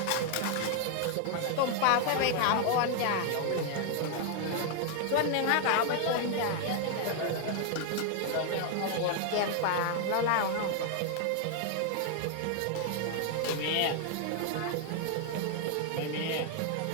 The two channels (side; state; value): both; different; correlation 0.00